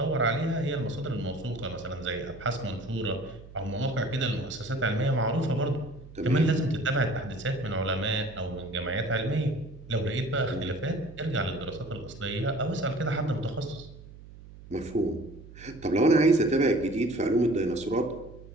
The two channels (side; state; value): right; noise; hum, 18 dB below the sound